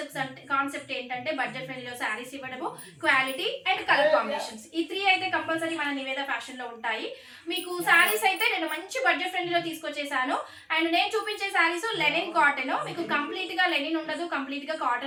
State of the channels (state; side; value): identical; both; correlation 1.00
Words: కాన్సెప్ట్ ఏంటంటే బడ్జెట్ ఫ్రెండ్లీలో శారీస్ ఇవ్వడము, క్వాలిటీ అండ్ కలర్ కాంబినేషన్స్. ఈ 3 అయితే కంపల్సరీ మన నివేద ఫ్యాషన్ లో ఉంటాయి. మీకు శారీస్ అయితే నేను మంచి బడ్జెట్ ఫ్రెండ్లీలో తీసుకొచ్చేసాను. అండ్ నేను చూపించే శారీస్ లెనిన్ కాటన్. మీకు కంప్లీట్ గా లెనిన్ ఉండదు, కంప్లీట్ గా